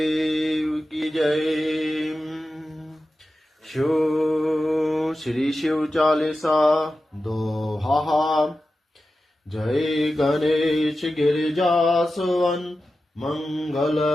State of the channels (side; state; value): both; normal; correlation 0.93